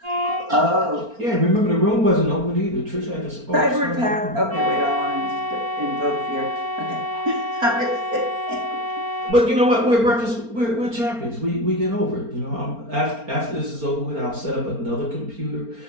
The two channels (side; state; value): left; late; 4.4 ms